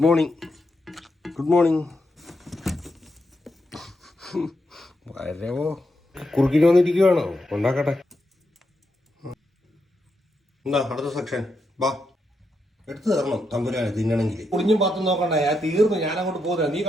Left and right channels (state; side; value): normal; both; correlation 0.83